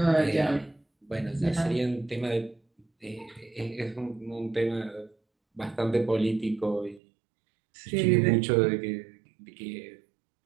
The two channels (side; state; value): left; drops out; at 7.0 s